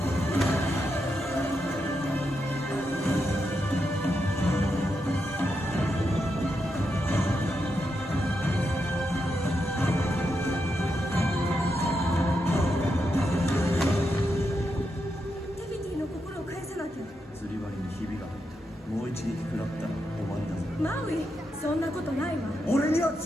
釣り針にひびが入った。もう一撃食らマウイ、そんなことないわ。俺には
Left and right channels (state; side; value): normal; both; correlation 0.84